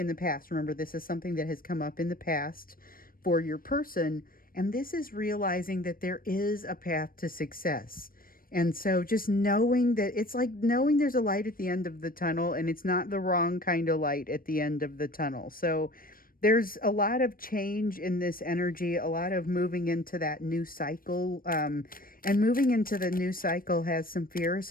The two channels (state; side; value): late; right; 0.41 ms